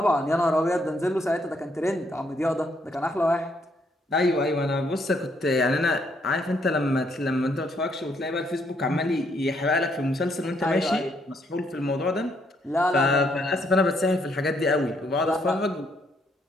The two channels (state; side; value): normal; both; correlation 0.72